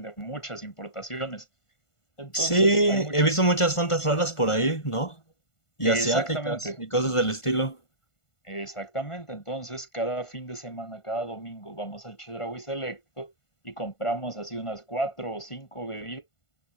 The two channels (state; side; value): late; right; 1.5 ms